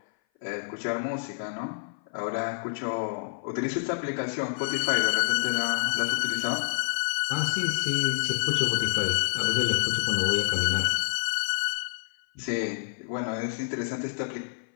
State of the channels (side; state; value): right; silent; 57 dB below the other